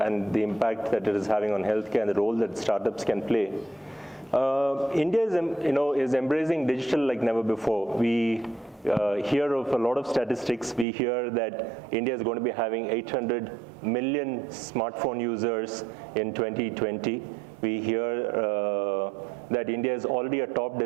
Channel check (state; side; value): drops out; left; at 10.9 s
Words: the impact that it is having on healthcare and the role that startups can play. India is embracing digital like never before. We hear of a lot of statistics. We hear that India is going to be having 800 million smartphone users in 2020. We hear that India is already a top